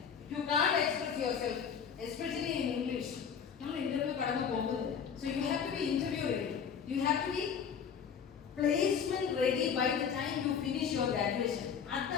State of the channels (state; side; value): quieter; right; 7.1 dB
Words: You can't express yourself especially in English. നമ്മൾ ഇന്റർവ്യൂ കടന്നു പോകുന്നത്. So you have to be interview ready. You have to be placement ready by the time you finish your graduation.